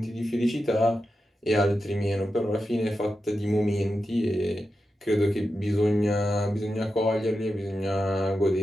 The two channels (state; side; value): normal; both; correlation 0.90